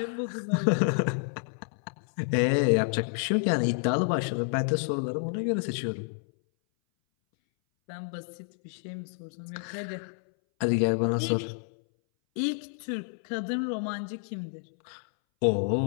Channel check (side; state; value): right; silent; 58 dB below the other